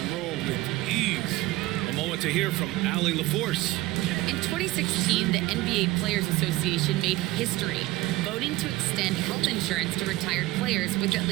roll with ease. A moment to hear from Allie LaForce. In 2016, the NBA Players Association made history, voting to extend health insurance to retired players with at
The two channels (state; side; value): quieter; left; 18.5 dB